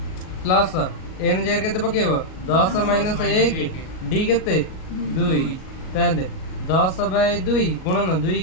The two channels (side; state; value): right; late; 38 ms